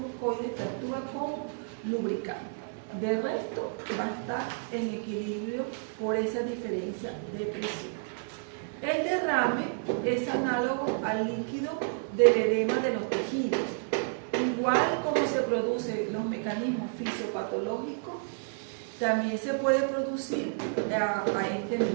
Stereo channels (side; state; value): left; silent; digital silence